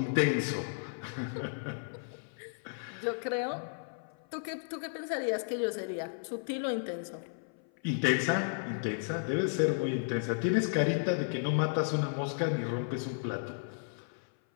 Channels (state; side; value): silent; right; 55 dB below the other